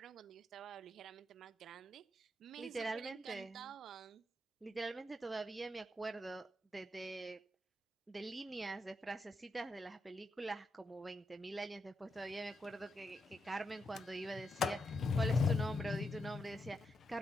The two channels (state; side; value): normal; both; correlation 0.83